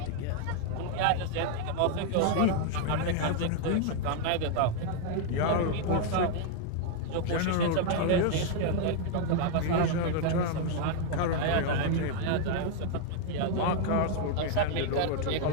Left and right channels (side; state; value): both; different; correlation 0.00